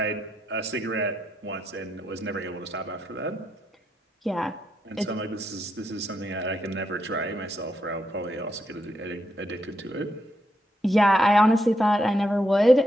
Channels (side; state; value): both; normal; correlation 0.81